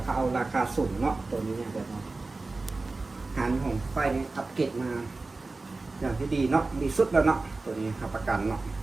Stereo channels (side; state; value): left; quieter; 3.5 dB